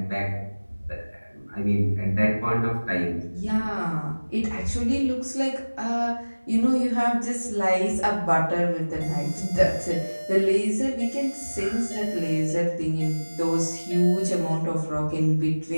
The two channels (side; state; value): both; inverted; correlation -1.00